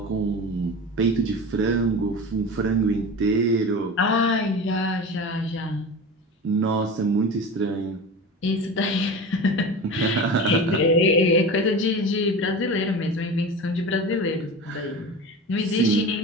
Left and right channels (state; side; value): normal; both; correlation 0.31